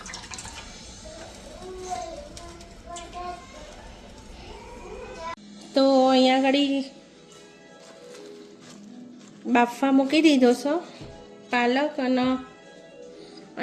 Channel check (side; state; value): both; identical; correlation 1.00